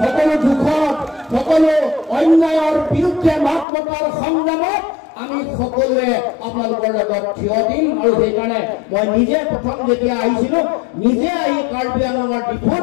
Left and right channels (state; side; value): drops out; right; at 3.7 s